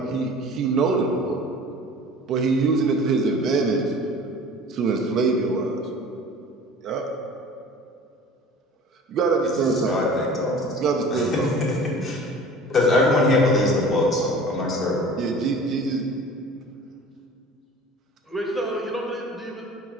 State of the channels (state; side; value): normal; both; correlation 0.43